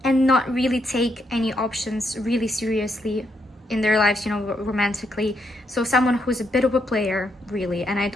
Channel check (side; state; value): both; normal; correlation 0.77